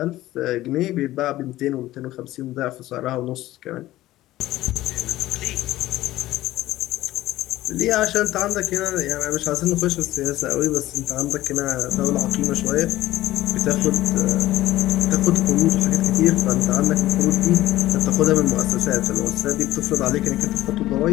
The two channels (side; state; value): right; quieter; 15.7 dB